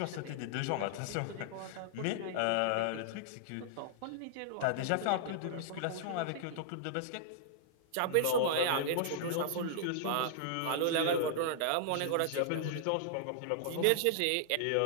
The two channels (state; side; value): different; both; correlation -0.01